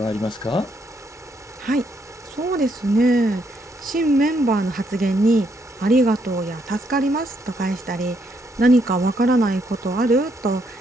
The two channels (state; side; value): normal; both; correlation 0.74